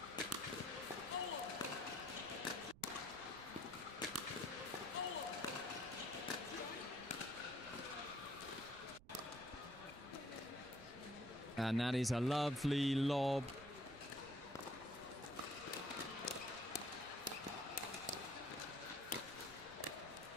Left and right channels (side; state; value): right; noise; rumble, 20 dB below the sound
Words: And that is a lovely lob.